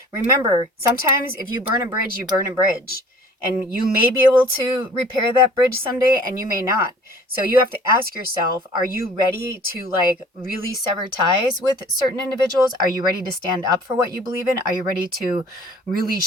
remember, sometimes if you burn a bridge, you burn a bridge. And you may be able to repair that bridge someday, and you may not. So you have to ask yourself, are you ready to like really sever ties with certain individuals? Are you ready to stand up for what you believe in? Are you ready to really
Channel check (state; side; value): normal; both; correlation 0.50